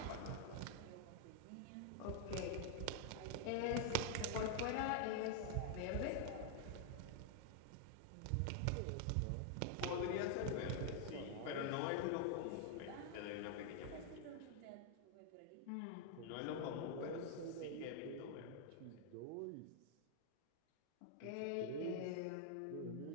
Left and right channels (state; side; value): different; both; correlation 0.00